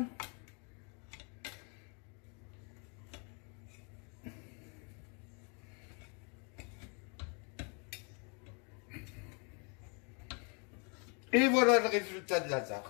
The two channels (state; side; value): quieter; right; 36.0 dB